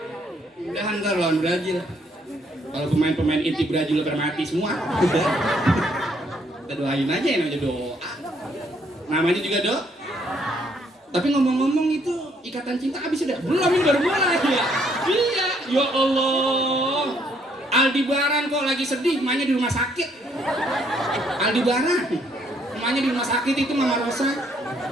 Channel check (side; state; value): both; normal; correlation 0.68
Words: Mudah-mudahan ntar lawan Brazil. Kalau pemain-pemain inti Brazil udah mati semua. Kita doain aja yang namanya doa. Namanya juga doa. Tapi ngomong-ngomong itu ikatan cinta habis sudah? Belum, ini baru mulai ya. Iya, ya Allah. Aldebaran kok lagi sedih, emaknya di rumah sakit. Aldebaran, emaknya di rumah sakit itu Mama Rosa.